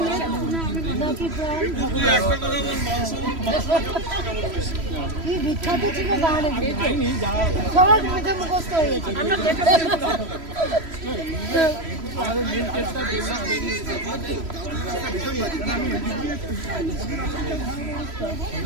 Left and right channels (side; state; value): left; late; 3.0 ms